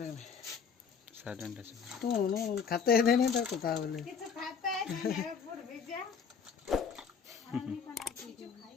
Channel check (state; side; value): quieter; right; 6.5 dB